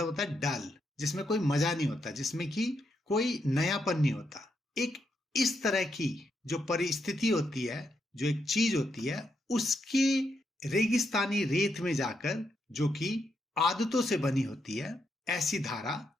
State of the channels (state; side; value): normal; both; correlation 0.81